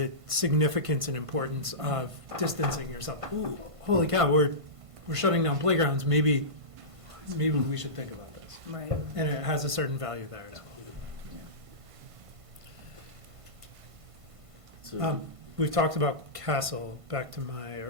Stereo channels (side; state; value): left; late; 1.5 ms